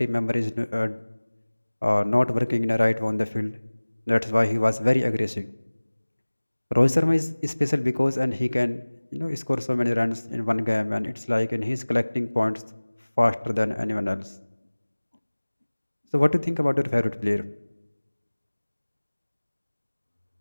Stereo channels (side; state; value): both; inverted; correlation -1.00